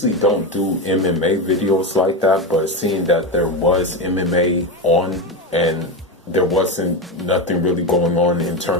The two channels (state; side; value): normal; both; correlation 0.16